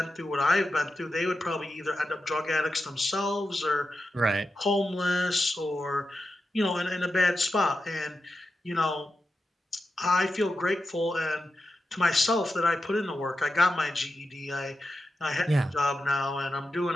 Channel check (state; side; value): normal; both; correlation 0.89